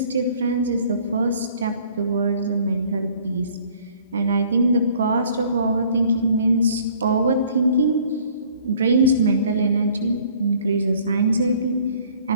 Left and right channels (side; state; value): both; inverted; correlation -0.56